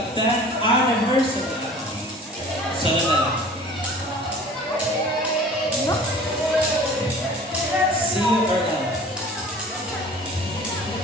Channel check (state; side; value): normal; both; correlation 0.45